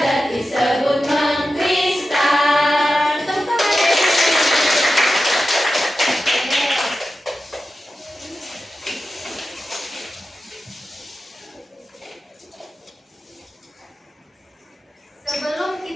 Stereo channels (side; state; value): both; normal; correlation 0.92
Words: disebut mengkristal. Tepuk tangan. Sebelum